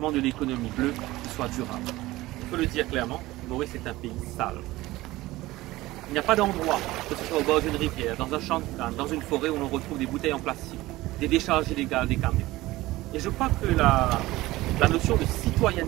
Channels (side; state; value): left; quieter; 18.2 dB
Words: de l'économie bleue qui soit durable. Il faut le dire clairement, Maurice est un pays sale. Il n'y a pas d'endroit, que ce soit au bord d'une rivière, dans un champ de canne, dans une forêt où l'on retrouve des bouteilles en plastique, des décharges illégales des camions. Et je crois que la notion de